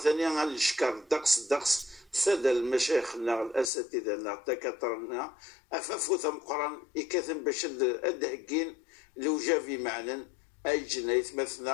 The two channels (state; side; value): drops out; right; at 3.7 s